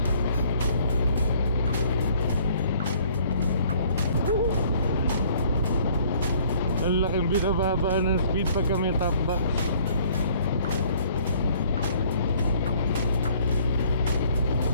Ang laking binababa ng speed pagka may top box.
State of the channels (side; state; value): both; inverted; correlation -0.58